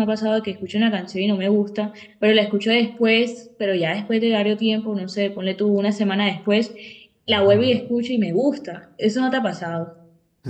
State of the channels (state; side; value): identical; both; correlation 1.00